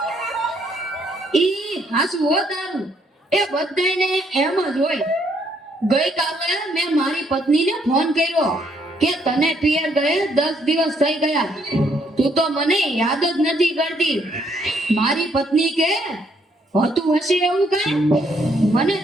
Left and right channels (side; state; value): both; normal; correlation 0.70